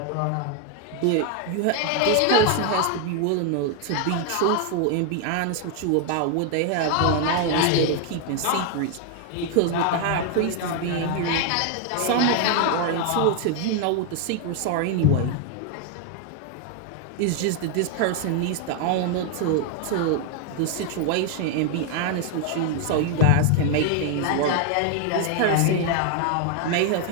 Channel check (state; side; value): different; both; correlation 0.00